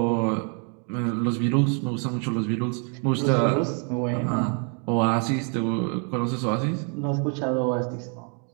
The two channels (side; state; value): left; quieter; 39.3 dB